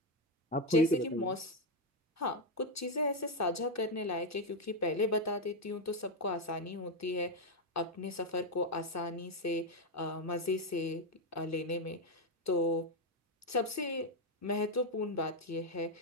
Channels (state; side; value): normal; both; correlation 0.05